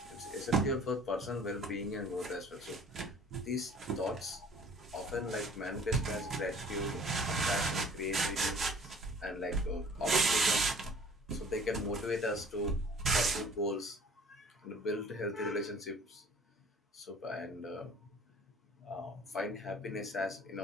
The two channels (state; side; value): normal; both; correlation 0.51